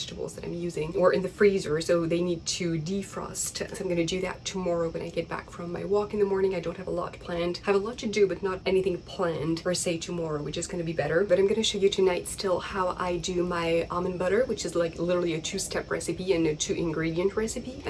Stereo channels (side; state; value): both; identical; correlation 1.00